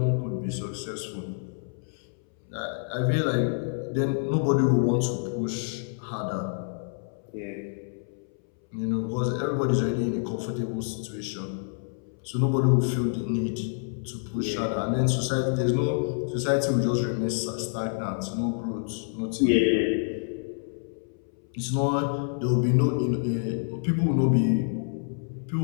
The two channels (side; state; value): right; silent; 60 dB below the other